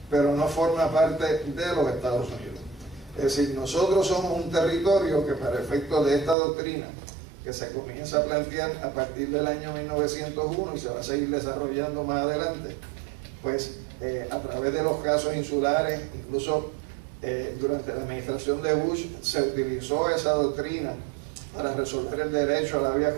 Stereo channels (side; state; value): left; drops out; at 6.4 s